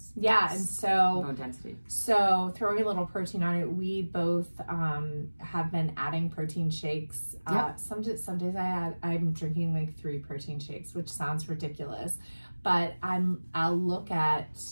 Yeah, and so bone density. So throwing a little protein on it, we both have been adding protein shakes. Some days I'm drinking like 3 protein shakes, which sounds ridiculous, but I'll look at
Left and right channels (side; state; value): both; inverted; correlation -1.00